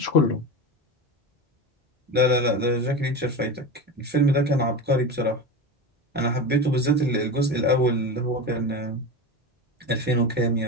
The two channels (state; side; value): normal; both; correlation 0.24